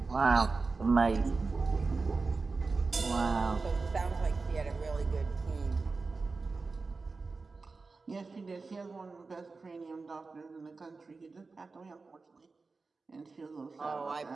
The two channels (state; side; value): quieter; left; 4.1 dB